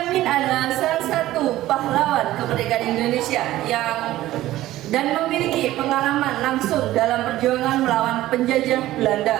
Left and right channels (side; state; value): left; quieter; 15.3 dB